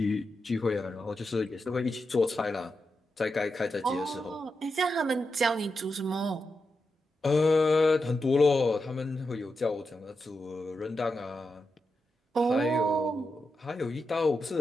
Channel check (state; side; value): normal; both; correlation 0.88